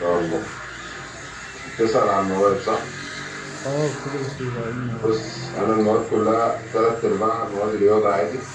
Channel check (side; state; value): both; identical; correlation 1.00